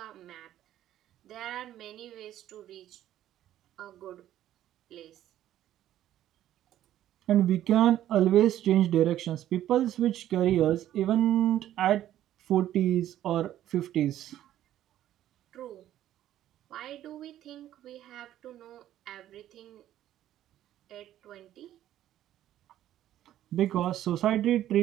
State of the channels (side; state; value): left; quieter; 12.4 dB